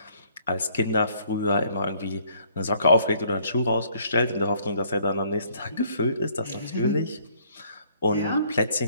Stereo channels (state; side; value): inverted; both; correlation -0.63